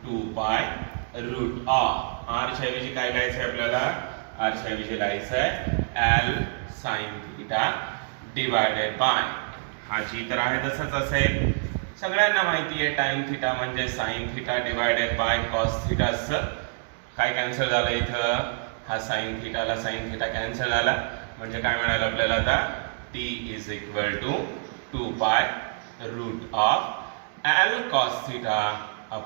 2 pi root of r च्या ऐवजी काय लिहायचं आहे आपल्याला. r च्या ऐवजी लिहायचं आहे l sin theta divided by, हा जी तर आहे तसंच असेल. सगळ्यांना माहिती आहे tan थीटा म्हणजे sin theta divided by cos theta. काय कॅन्सल झालं इथं, हा sin थीटाला sin थीटा कॅन्सल झाला, म्हणजे काय मिळालं आपल्याला आता. t is equal to 2 pi root of l cos theta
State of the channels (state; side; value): silent; left; digital silence